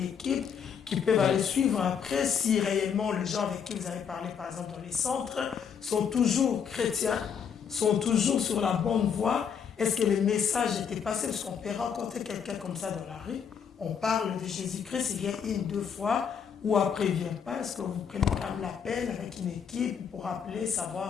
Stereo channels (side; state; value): right; quieter; 7.3 dB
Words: équipe qui peut aller suivre après si réellement les gens avec qui vous avez parlé, par exemple dans les centres, sont toujours chrétiens, sont toujours sur la bonne voie? Est-ce que le message était passé? Parce qu'on peut rencontrer quelqu'un comme ça dans la rue, on parle de Jésus-Christ, il vient une, deux fois, ou après il ne vient pas. Est-ce que vous prenez quand même la peine avec une équipe pour appeler,